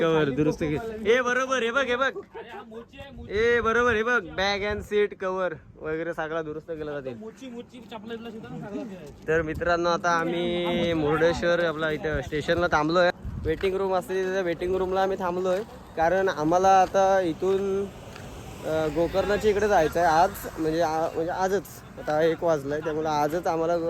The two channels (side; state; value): both; identical; correlation 1.00